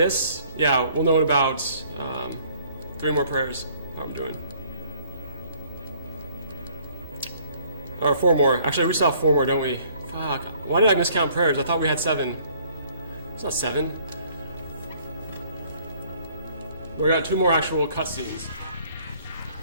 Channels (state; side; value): inverted; both; correlation -0.59